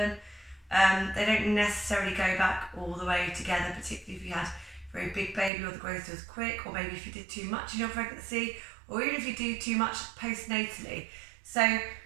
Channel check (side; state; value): left; drops out; at 5.5 s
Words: they don't necessarily go back all the way together, particularly if you had a very big baby or the growth was quick, or maybe if you did too much in your pregnancy, or even if you do too much postnatally. So